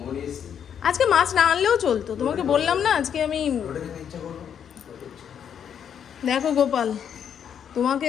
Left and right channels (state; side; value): quieter; right; 8.4 dB